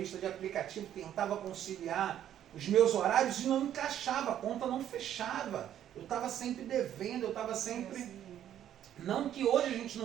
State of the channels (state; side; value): quieter; left; 10.8 dB